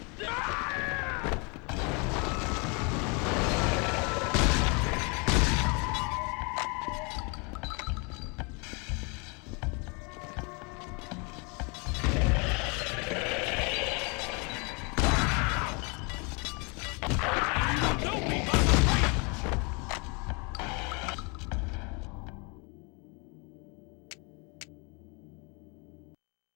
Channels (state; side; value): quieter; right; 32.0 dB